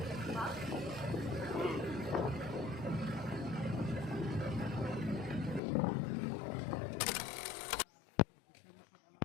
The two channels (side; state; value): right; drops out; at 5.6 s